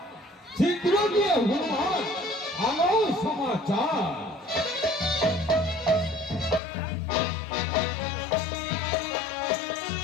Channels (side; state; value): right; drops out; at 6.6 s